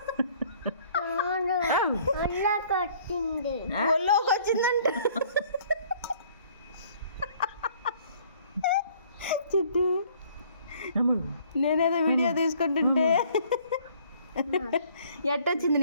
ఒళ్ళోకి వచ్చిందంట. చిట్టి నేనేదో వీడియో తీసుకుంటుంటే ఎట్టొచ్చింది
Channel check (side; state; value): both; inverted; correlation -0.58